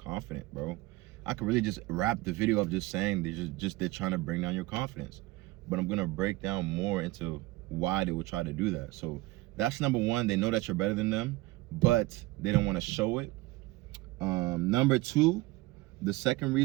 bro. I could really just wrap the video up just saying they're trying to bring down your confidence. But I'm gonna break down more into why they would try to do that. So that's number one. They know that you're better than them, but they don't want to show it. Number two, the second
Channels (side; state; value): left; quieter; 19.7 dB